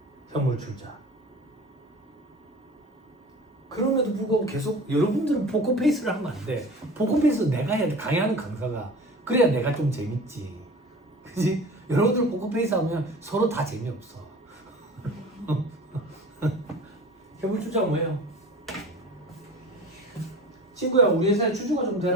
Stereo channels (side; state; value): both; normal; correlation 0.39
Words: 현물 출자. 그럼에도 불구하고 계속 여러분들은 포커페이스를 하면 안 돼. 포커페이스 내가 해야 돼. 강의하는 강사가. 그래야 내가 좀 재밌지. 그지? 여러분들 포커페이스 하면 서로 다 재미없어. 현물 출자가 뭐예요? 친구야, 우리 회사에 주주가 좀